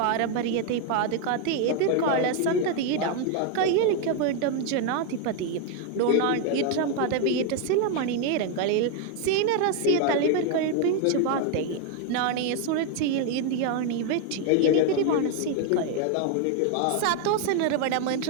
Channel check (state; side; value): different; both; correlation 0.01